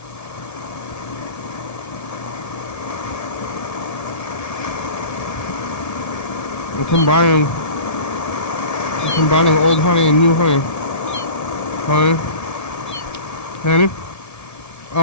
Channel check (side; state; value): right; late; 1.7 ms